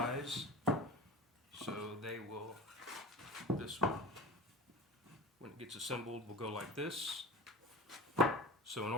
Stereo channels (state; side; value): normal; both; correlation 0.34